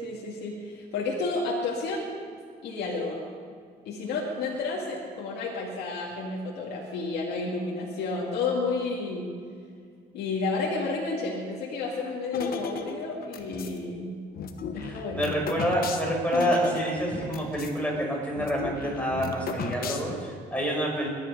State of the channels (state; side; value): normal; both; correlation 0.48